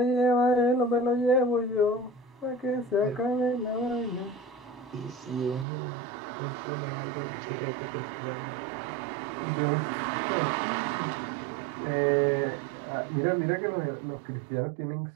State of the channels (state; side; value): drops out; left; at 5.7 s